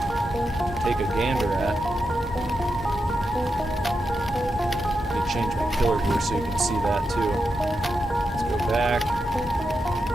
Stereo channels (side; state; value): both; normal; correlation 0.86